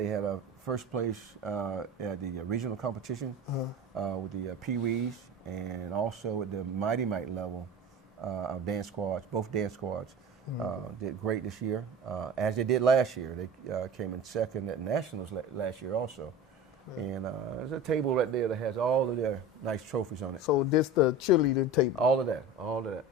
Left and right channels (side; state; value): both; normal; correlation 0.34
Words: had a first place at the regional competition with the Pee-wees, and also at the Mighty Mite level, our dance squads, both dance squads, did great this year, as they did last year. They came in second at Nationals last year also. And there's a table right there that has all of their nice trophies on it. So this the cheerleading table? All of that, all of that.